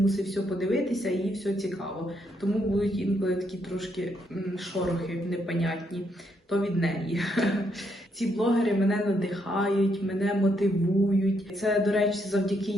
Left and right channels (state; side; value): normal; both; correlation 0.76